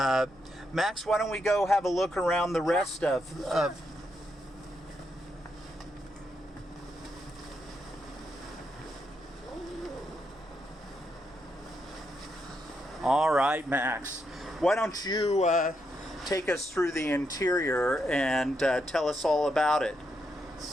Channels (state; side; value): noise; right; hum, 29 dB below the sound